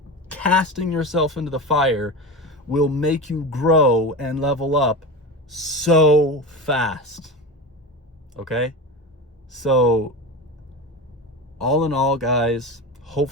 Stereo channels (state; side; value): normal; both; correlation 0.25